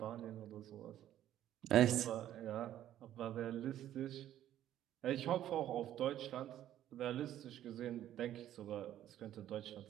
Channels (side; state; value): left; quieter; 12.0 dB